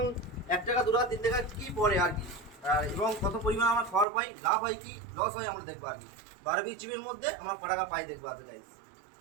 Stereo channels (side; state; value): left; drops out; at 4.0 s